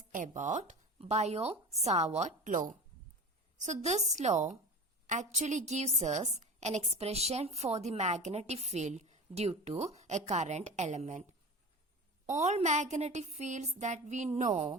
about Biot-Savart law. So this law actually gives us an expression for the magnetic field due to a current element. All magnetic fields that we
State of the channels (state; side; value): normal; both; correlation 0.32